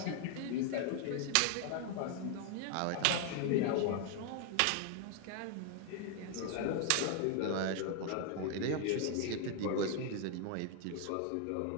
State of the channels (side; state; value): both; different; correlation 0.00